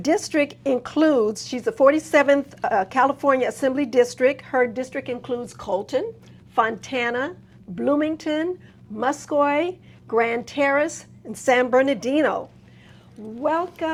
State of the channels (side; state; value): both; identical; correlation 1.00